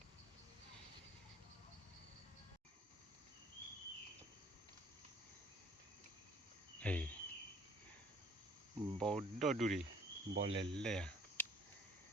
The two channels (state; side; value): normal; both; correlation 0.57